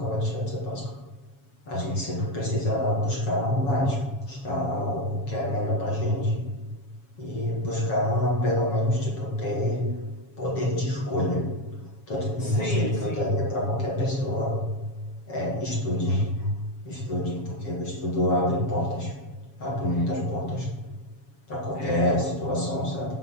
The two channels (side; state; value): right; late; 7.2 ms